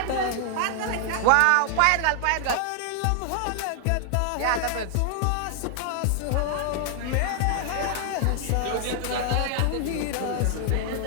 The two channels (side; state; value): both; different; correlation 0.00